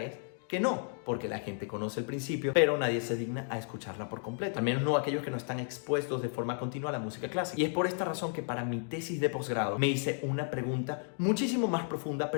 es que no, porque la gente conoce el principio, pero nadie se digna a escucharla por completo. Al menos no aquellos que no están expuestos de forma continua a la música clásica. Y es por esta razón que para mi tesis de posgrado me hice una pregunta muchísimo más profunda,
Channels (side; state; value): right; silent; 56 dB below the other